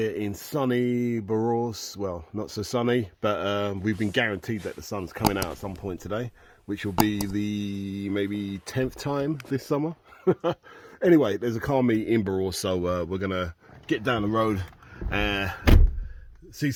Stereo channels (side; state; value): both; identical; correlation 1.00